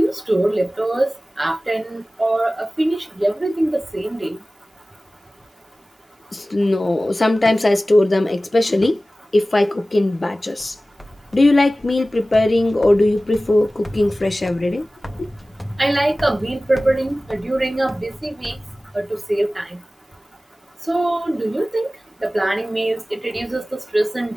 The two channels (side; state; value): both; normal; correlation 0.97